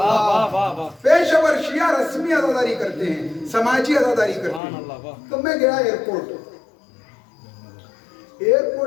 پیشور شیعہ رسمی عزاداری کرتے ہیں, سماجی عزاداری کرتے ہیں. تو میں گیا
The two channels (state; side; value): drops out; right; at 4.6 s